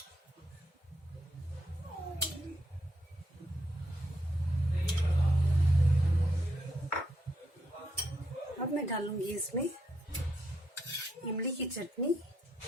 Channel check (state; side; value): normal; both; correlation 0.78